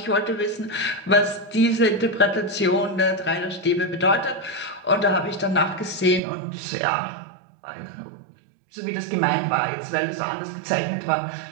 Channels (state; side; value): drops out; left; at 6.2 s